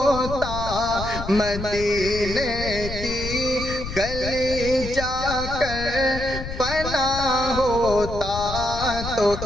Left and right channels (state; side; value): noise; left; rumble, 8 dB below the sound